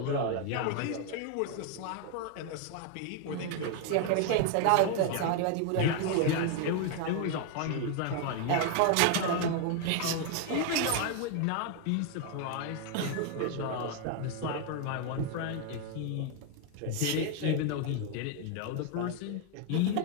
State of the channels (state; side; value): different; both; correlation 0.01